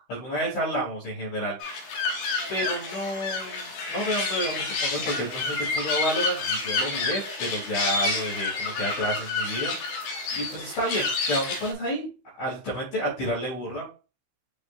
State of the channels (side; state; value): right; late; 16 ms